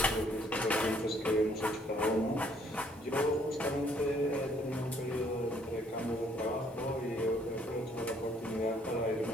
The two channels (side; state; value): both; normal; correlation 0.65